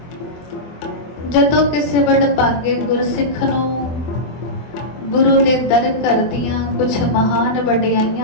ਜਦੋਂ ਕਿਸੇ ਵਡਭਾਗੇ ਗੁਰਸਿੱਖ ਨੂੰ ਗੁਰੂ ਦੇ ਦਰ ਕਰਦੀਆਂ ਕੁਝ ਮਹਾਨ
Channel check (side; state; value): right; late; 24 ms